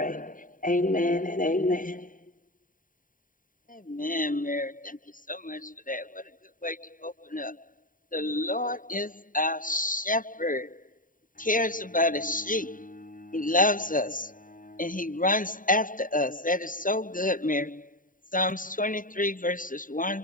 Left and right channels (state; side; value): late; right; 0.39 ms